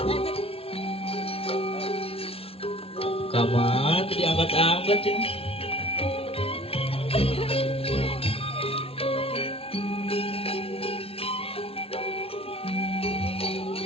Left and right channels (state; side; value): late; right; 0.27 ms